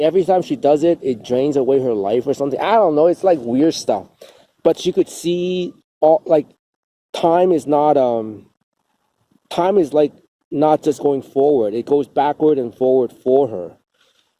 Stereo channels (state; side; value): identical; both; correlation 1.00